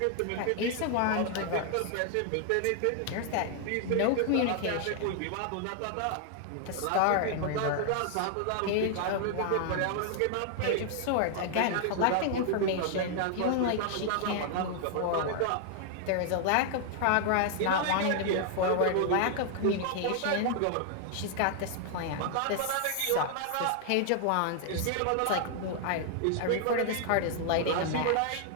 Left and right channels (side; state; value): both; different; correlation 0.00